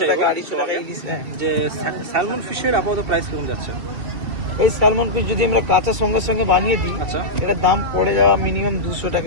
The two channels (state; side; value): late; left; 2.7 ms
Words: টাকা, চাইবো 250 টাকা ইলিশ। হ্যাঁ, যে স্যালমন ফিশের আপাতত প্রাইস কিরকম যাচ্ছে? এই স্যালমন পিস যদি আমরা কাঁচা সঙ্গে সঙ্গে বানিয়ে দিই, আচ্ছা। এটার দাম পড়ে যাওয়া মিনিমাম 200